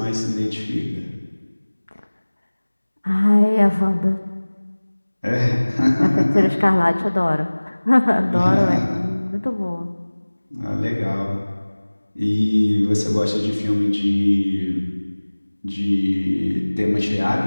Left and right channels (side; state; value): both; inverted; correlation -1.00